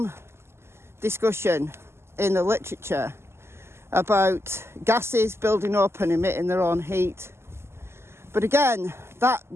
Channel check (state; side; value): late; left; 0.12 ms